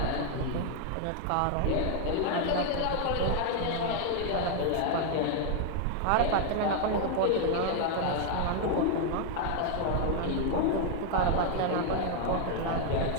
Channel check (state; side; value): different; both; correlation 0.00